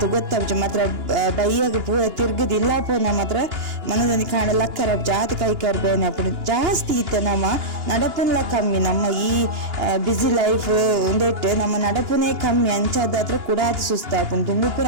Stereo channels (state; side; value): late; left; 2.9 ms